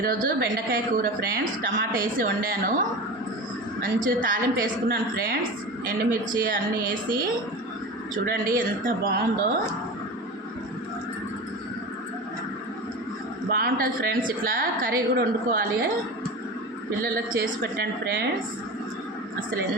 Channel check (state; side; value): normal; both; correlation 0.29